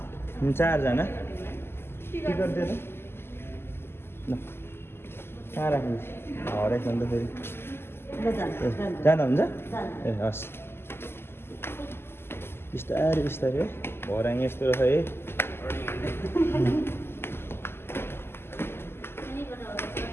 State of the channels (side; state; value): right; late; 0.12 ms